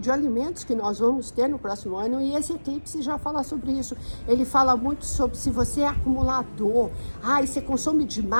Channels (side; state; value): both; inverted; correlation -1.00